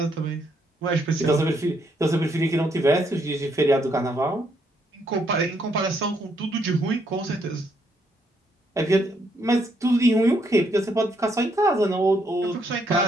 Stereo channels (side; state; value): both; normal; correlation 0.73